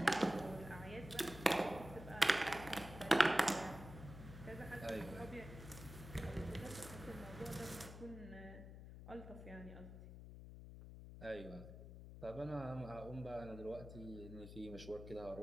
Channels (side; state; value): left; noise; hum, 12 dB below the sound